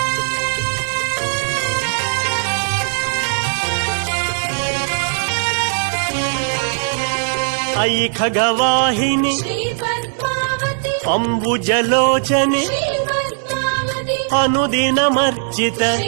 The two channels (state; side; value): silent; left; 64 dB below the other